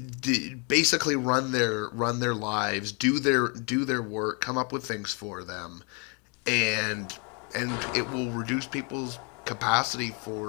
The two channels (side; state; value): right; quieter; 34.9 dB